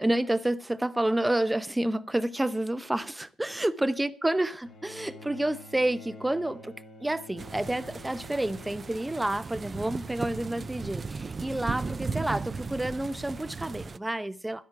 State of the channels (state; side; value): normal; both; correlation 0.98